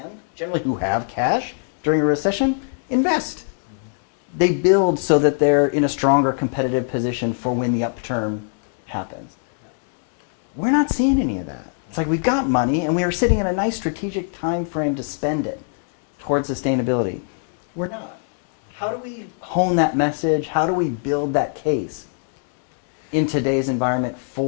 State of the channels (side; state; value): right; silent; 64 dB below the other